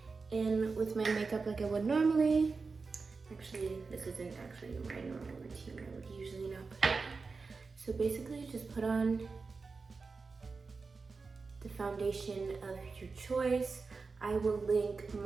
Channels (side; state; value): left; quieter; 4.4 dB